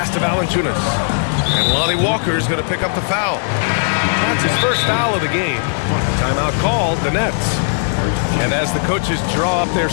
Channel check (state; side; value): silent; right; digital silence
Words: to Valanciunas. And Lonnie Walker is going to pick up the foul. That's his first foul of the game. Timeout called, the Nets. And as the coaches draw up their